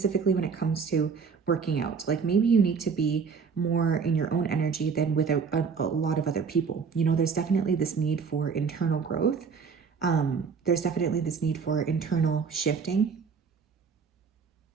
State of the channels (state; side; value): quieter; left; 5.8 dB